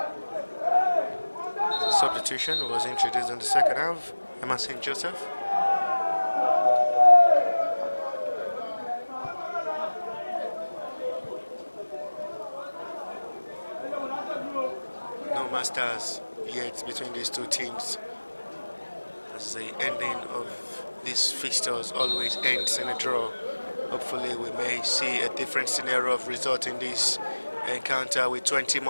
Substitution was introduced in the second half. Emma St. Joseph. No masters yet between these two teams, as the ending of these fixtures always ends in a draw. Hopefully we may see a different scenario of result in this encounter with 20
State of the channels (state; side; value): inverted; both; correlation -1.00